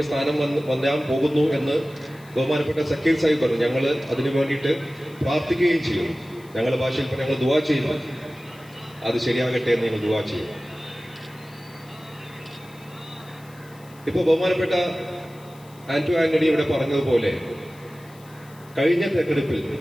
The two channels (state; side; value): noise; left; hiss, 26 dB below the sound